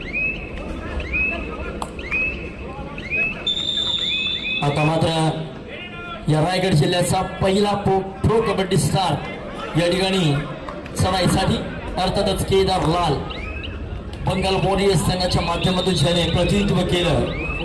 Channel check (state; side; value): identical; both; correlation 1.00